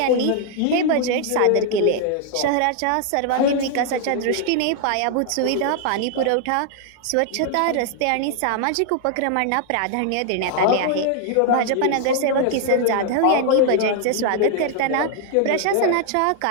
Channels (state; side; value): different; both; correlation 0.00